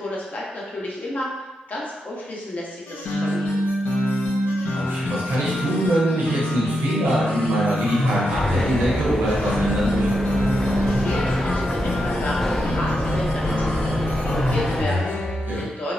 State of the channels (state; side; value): normal; both; correlation 0.85